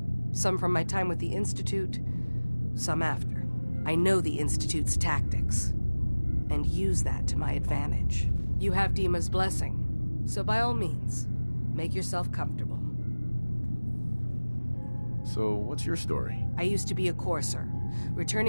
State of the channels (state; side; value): inverted; both; correlation -1.00